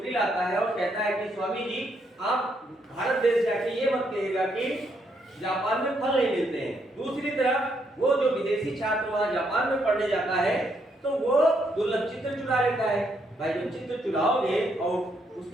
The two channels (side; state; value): both; normal; correlation 0.75